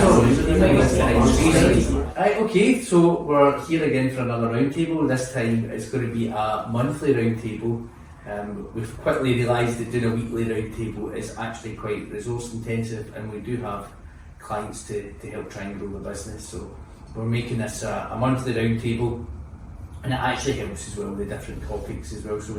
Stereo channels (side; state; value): both; identical; correlation 1.00